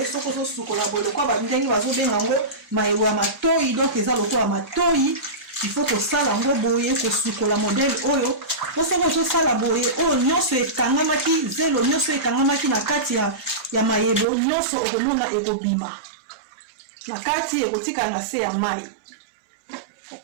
Soki ozosukola boye lokwa bandenge bazobenga yango mayebo ya matoi, donc eza lokola matoi. Il faut kosala yango boye kosukola modele oyo po soki ozosala boye oyo nyonso ekangamaki zelo nyonso ekangamaki na kati ya mayebo nyonso okomona ekobima na kati ekotikala na se ya mai.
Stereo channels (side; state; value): left; drops out; at 14.2 s